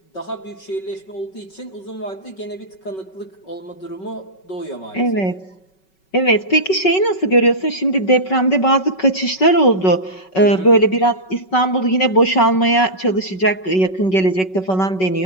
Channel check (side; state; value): right; late; 5.3 ms